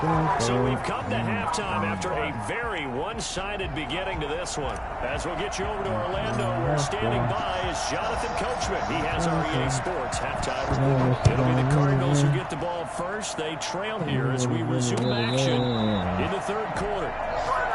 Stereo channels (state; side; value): identical; both; correlation 1.00